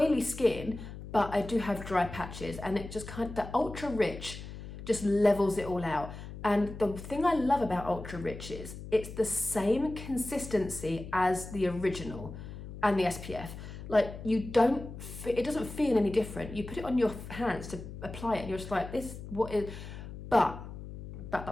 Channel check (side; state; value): left; noise; hum, 11 dB below the sound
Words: skin, but I do have dry patches, and it just the Ultra Rich just levels it all out. And the thing I love about Ultra Rich is it's the same consistency as the original and the SPF. Like it doesn't feel any different. You put it on your hands to apply it and you're just like, but